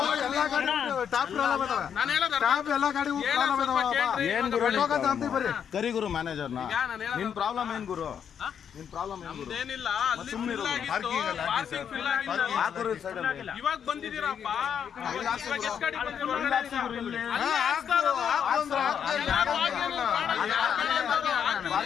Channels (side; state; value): right; quieter; 8.0 dB